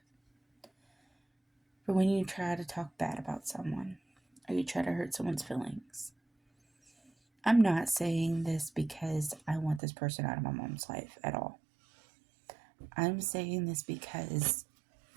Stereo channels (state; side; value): drops out; left; at 9.8 s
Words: But when you try to talk bad about someone or you try to hurt someone's feelings, I'm not saying this because I want this person out of my mom's life at all. I'm saying this because